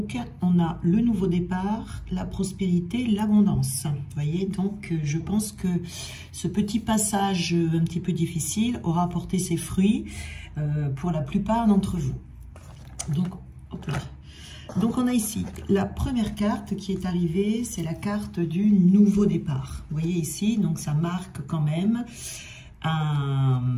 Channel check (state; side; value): identical; both; correlation 1.00